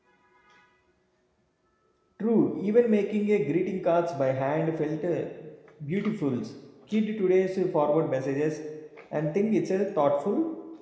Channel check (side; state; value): both; identical; correlation 1.00